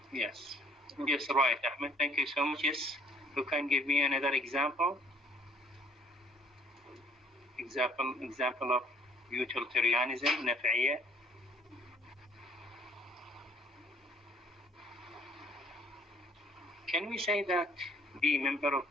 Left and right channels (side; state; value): both; normal; correlation 0.59